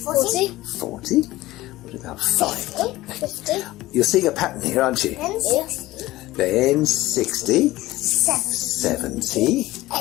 40. 40. What about 5? 50. You're seeing a pattern here, aren't you? Then 60. Then 60. 70.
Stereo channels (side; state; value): right; quieter; 17.5 dB